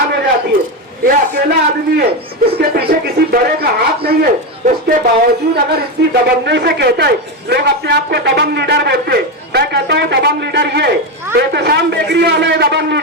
हो जाती है। ये अकेला आदमी है, इसके पीछे किसी बड़े का हाथ नहीं है। उसके बावजूद अगर इतनी दबंगई से कहता है, लोग अपने आप को दबंग लीडर बोलते हैं। मैं कहता हूँ दबंग लीडर ये एहतशाम बेकरी वाला है, दबंग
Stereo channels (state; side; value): normal; both; correlation 0.12